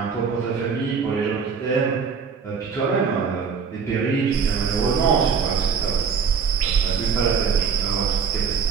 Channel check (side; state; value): left; quieter; 6.0 dB